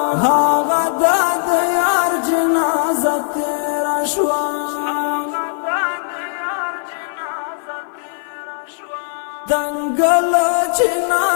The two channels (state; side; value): silent; right; 56 dB below the other